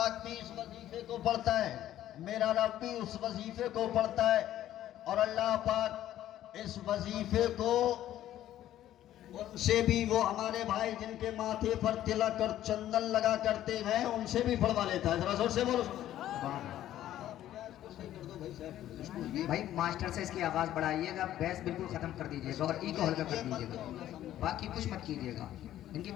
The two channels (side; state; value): right; quieter; 12.7 dB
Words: भी इस वजीफे को पढ़ता है, मेरा रब भी उस वजीफे को पढ़ता है। और अल्लाह पाक इस वजीफे को उनसे भी, वो हमारे भाई जिनके माथे पर तिलक और चंदन लगा करते हैं, उनसे भी पढ़वा लेता है। जरा जोर से बोलो भाई। मास्टर से इसकी आवाज़ बढ़ाइएगा, बैस बिल्कुल ख़त्म कर दीजिएगा और ई को हल्का कर दीजिएगा, बाकी कुछ मत कीजिएगा। इनकी